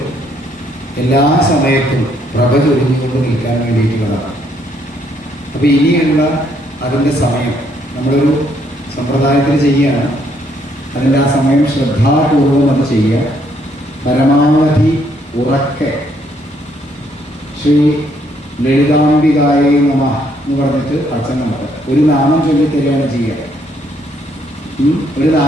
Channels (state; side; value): normal; both; correlation 0.70